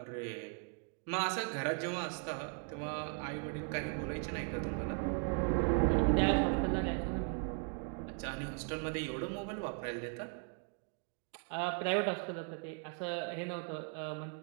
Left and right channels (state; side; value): quieter; left; 39.7 dB